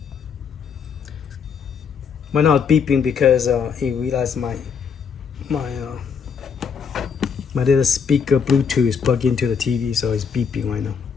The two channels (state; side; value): quieter; right; 6.5 dB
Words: Right now it's beeping because he realized my little speaker Bluetooth is plugged into the TV, so it's beeping right now.